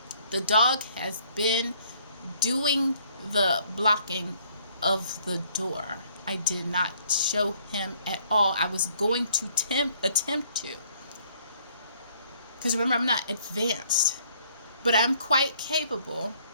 The dog has been doing the blocking of the door. I did not show him at all. I was going to attempt to. Because remember, I'm not advanced, but I'm quite capable,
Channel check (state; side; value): inverted; both; correlation -0.64